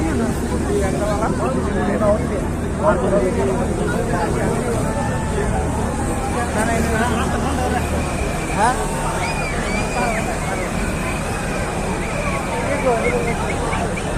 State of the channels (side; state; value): both; identical; correlation 1.00